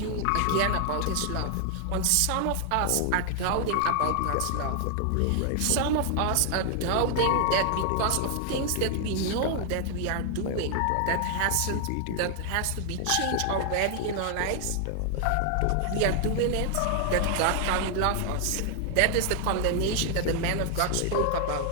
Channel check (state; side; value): different; both; correlation 0.00